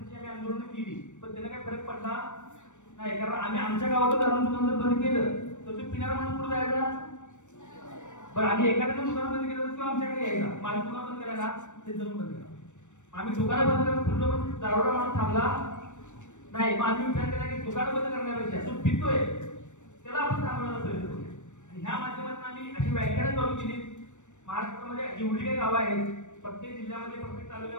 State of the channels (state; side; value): late; right; 0.84 ms